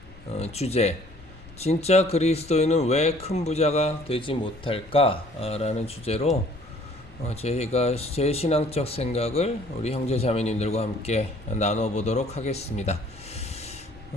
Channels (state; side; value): noise; left; rumble, 20 dB below the sound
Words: 주제, 진짜 그리스도인은 왜 큰 부자가 되지 못할까? 라는 주제로 제가 제 신앙적 생각을 우리 형제자매님들과 함께 나눠보도록 하겠습니다.